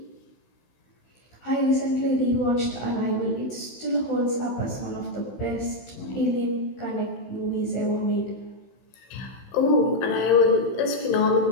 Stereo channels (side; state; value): right; late; 16 ms